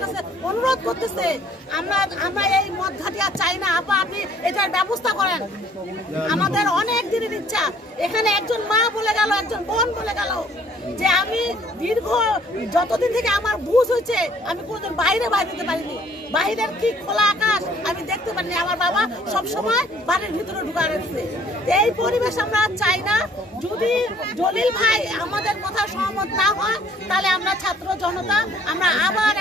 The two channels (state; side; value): normal; both; correlation 0.58